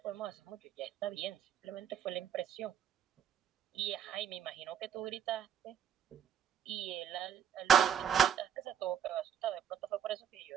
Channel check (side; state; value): left; quieter; 8.6 dB